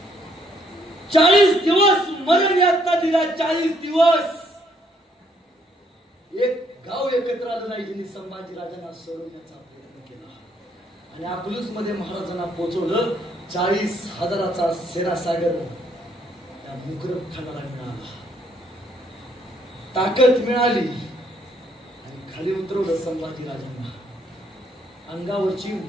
40 दिवस मरण यातना दिला. 40 दिवस एक गाव एकत्र आलं नाही. ज्यांनी संभाजीराजांना सोडवण्याचा प्रयत्न केला. आणि अकलूज मध्ये महाराजांना पोहोचवलं. 40,000चा सेनासागर त्या मुकरब खानाला मिळाला. ताकद मिळाली आणि खाली उतरवलं संभाजी राजांना. अंगावरची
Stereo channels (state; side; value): normal; both; correlation 0.69